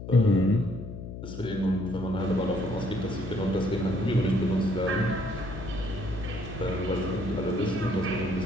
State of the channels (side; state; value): left; noise; hum, 9 dB below the sound